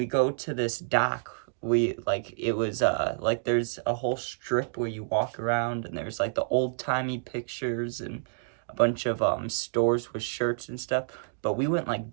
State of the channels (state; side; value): silent; left; digital silence